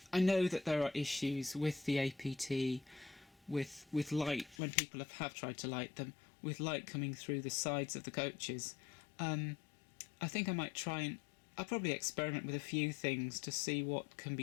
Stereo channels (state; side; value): drops out; right; at 4.5 s